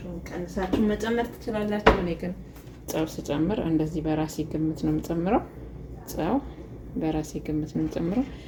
ቀንሳችሁ መጨመር ትችላላችሁ። እኔ ግን ጨው ስጨምር እንደዚህ በራሴ ግምት ነው የምጨምረው። ጨው በራሴ ግምት ነው የምጨምረው።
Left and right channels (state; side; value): identical; both; correlation 1.00